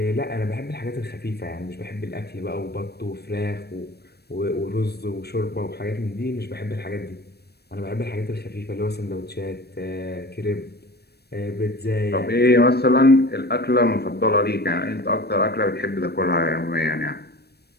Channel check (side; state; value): right; late; 0.47 ms